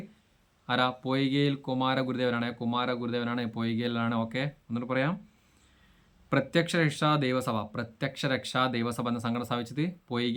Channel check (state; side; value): identical; both; correlation 1.00